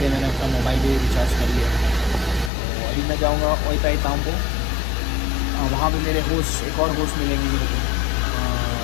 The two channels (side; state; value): right; drops out; at 2.5 s